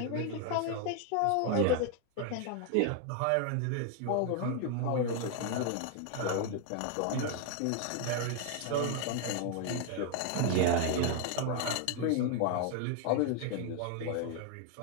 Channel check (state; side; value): different; both; correlation 0.00